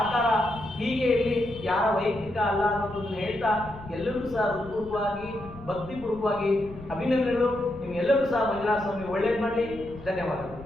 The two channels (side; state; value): left; noise; rumble, 16 dB below the sound